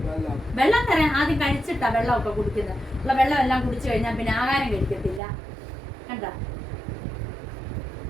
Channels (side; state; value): left; drops out; at 5.2 s